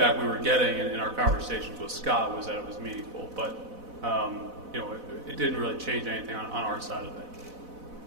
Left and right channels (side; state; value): left; late; 4.0 ms